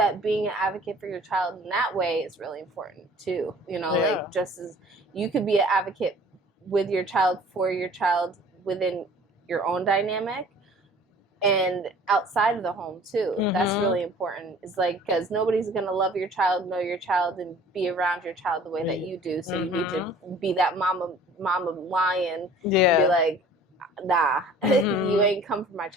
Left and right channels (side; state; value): both; normal; correlation 0.49